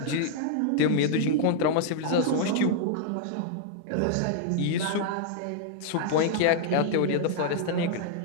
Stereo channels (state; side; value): different; both; correlation -0.01